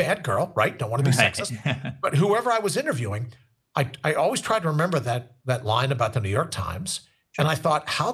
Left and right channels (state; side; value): identical; both; correlation 1.00